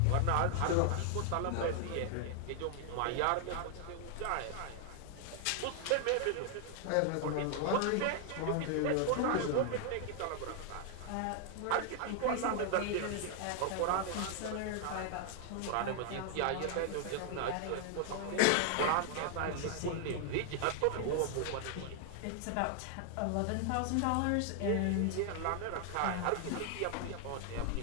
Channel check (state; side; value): different; both; correlation 0.00